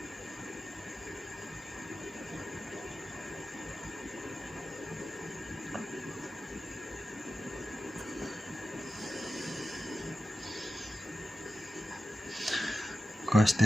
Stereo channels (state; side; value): normal; both; correlation 0.92